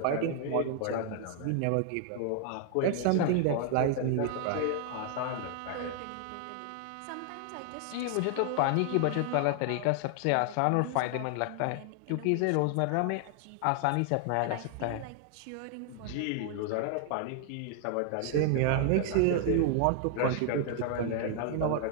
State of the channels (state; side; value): different; both; correlation 0.00